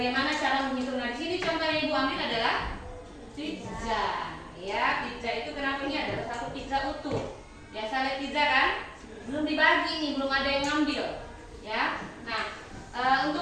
cara menghitung? Nah, di sini contoh yang Ibu ambil adalah pizza. Ya, pizza itu kenapa ini adalah satu pizza utuh. Biasa lihat pizza kan? Belum dibagi nih, belum ada yang ngambil. Ya. Nah,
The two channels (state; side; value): identical; both; correlation 1.00